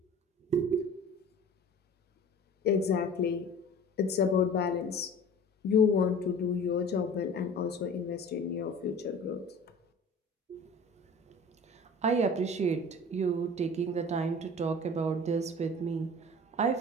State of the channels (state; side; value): normal; both; correlation 0.42